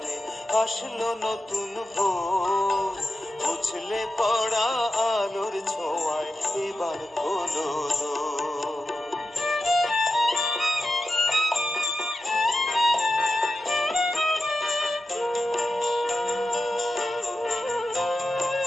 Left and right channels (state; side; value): normal; both; correlation 0.90